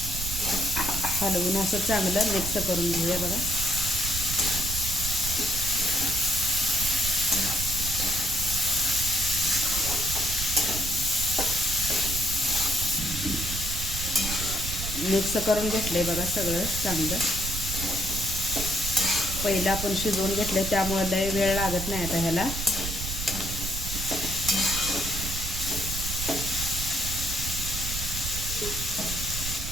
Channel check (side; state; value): right; noise; rumble, 5 dB below the sound